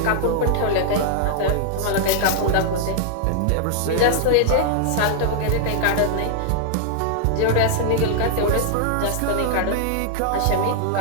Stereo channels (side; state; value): both; different; correlation -0.01